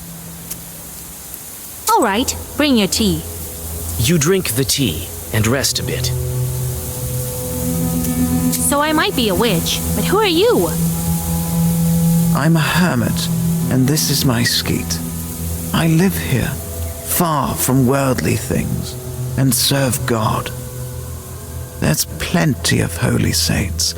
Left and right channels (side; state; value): both; identical; correlation 1.00